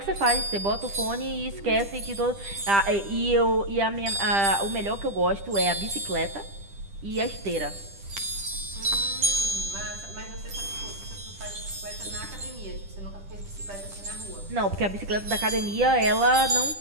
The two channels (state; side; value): late; left; 10 ms